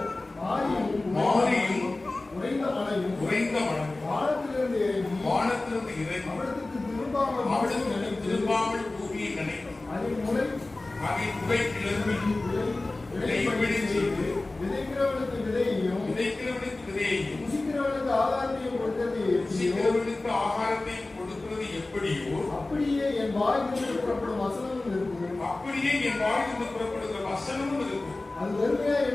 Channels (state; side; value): quieter; right; 3.0 dB